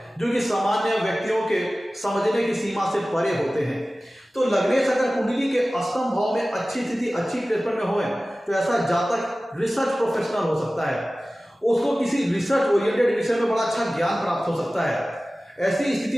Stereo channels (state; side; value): normal; both; correlation 0.97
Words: जो कि सामान्य व्यक्तियों के समझने की सीमा से परे होते हैं। तो लग्नेश अगर कुंडली के अष्टम भाव में अच्छी स्थिति अच्छी प्लेसमेंट में होए तो ऐसा जातक रिसर्च प्रोफेशनल हो सकता है, उसको किसी रिसर्च ओरिएंटेड विषय में बड़ा अच्छा ज्ञान प्राप्त हो सकता है। ऐसी